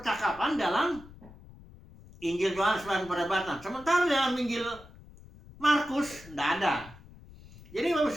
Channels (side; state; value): left; noise; rumble, 20 dB below the sound